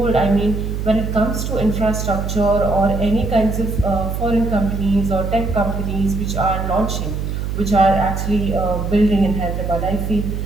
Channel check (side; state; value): right; noise; hum, 3 dB below the sound